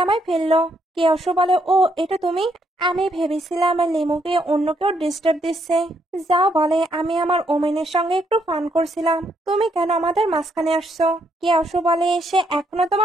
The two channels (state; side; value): normal; both; correlation 0.74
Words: আমায় ফেললো? কেউসু বলে, ও এটা তুমি? আমি ভেবেছিলাম লিমুকে অন্য কেউ ডিস্টার্ব দিচ্ছে। যাও বলে, আমি আমার ওমেনের সঙ্গে একটু ফান করছিলাম, তুমি কেন আমাদের মাঝখানে আসছো? কেউসু বলে, সে এখনো